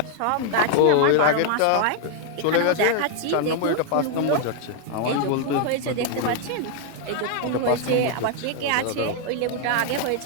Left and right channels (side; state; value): both; different; correlation 0.00